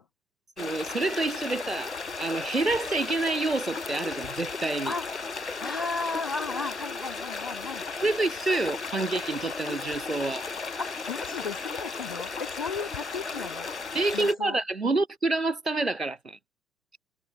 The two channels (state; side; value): normal; both; correlation 0.74